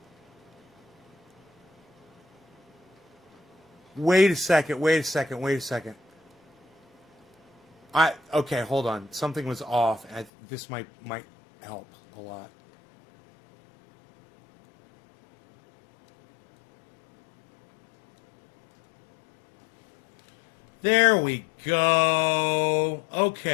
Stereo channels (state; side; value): drops out; right; at 10.3 s